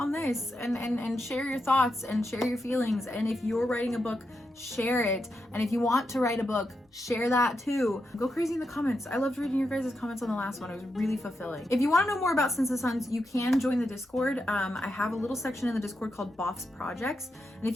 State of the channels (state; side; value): normal; both; correlation 0.86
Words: this and share your thoughts and share your feelings, and if you're writing a book, share it. And if you want to write a book, share that too. Go crazy in the comments. I loved reading your guys' comments on the last one. It was really fulfilling. If you want to know more about Since the Suns, you can join the Discord. I have a little section in the Discord called Boff's Projects, and if